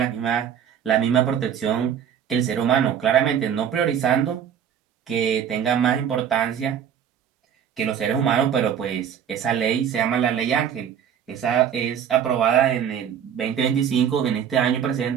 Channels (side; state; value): left; quieter; 8.7 dB